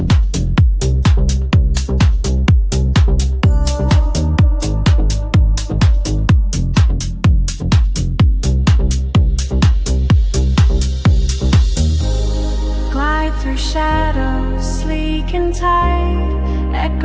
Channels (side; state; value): both; identical; correlation 1.00